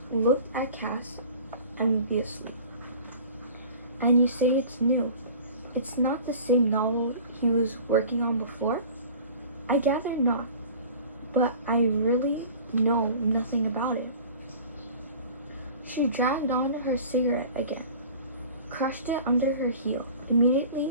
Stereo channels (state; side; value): inverted; both; correlation -0.43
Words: looked at Cass enviously. And you say it's new. It's not the same novel he was working on before? I gather not, but I really know nothing about it. She dragged on her cigarette again, crushed it under her heel, immediately